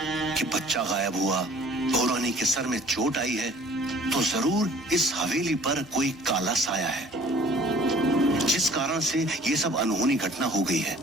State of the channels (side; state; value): both; normal; correlation 0.51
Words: कि बच्चा गायब हुआ, भौरानी के सर में चोट आई है, तो जरूर इस हवेली पर कोई काला साया है, जिस कारण से ये सब अनहोनी घटना हो गई है।